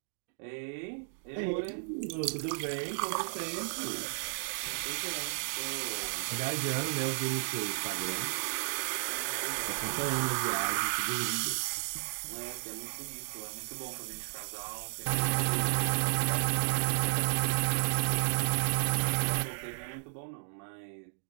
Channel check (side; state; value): left; silent; digital silence